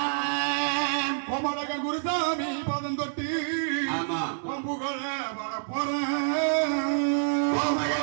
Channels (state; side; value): silent; left; 59 dB below the other